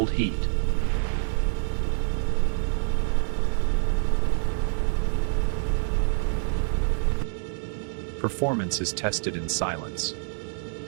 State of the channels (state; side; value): silent; left; digital silence